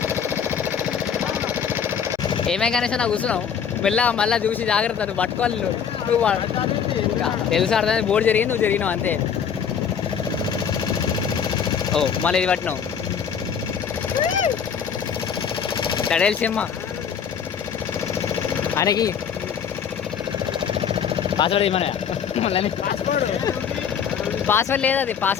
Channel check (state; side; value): quieter; right; 7.5 dB